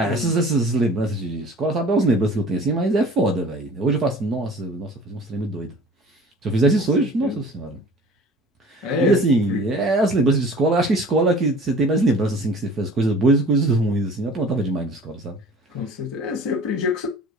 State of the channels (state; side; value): normal; both; correlation 0.46